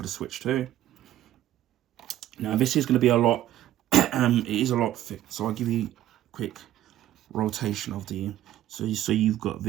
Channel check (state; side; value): quieter; left; 13.1 dB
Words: the Switch 2. Now this is going to be a lot, it is a lot thick. So I'll give you a quick rotation of the, so you've got